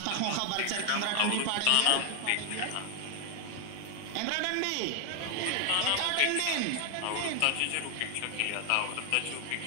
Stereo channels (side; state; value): both; different; correlation 0.01